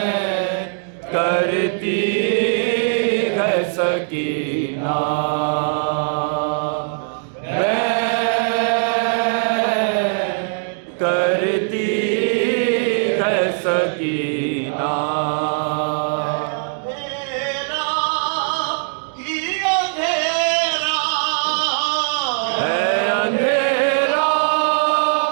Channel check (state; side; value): silent; left; 66 dB below the other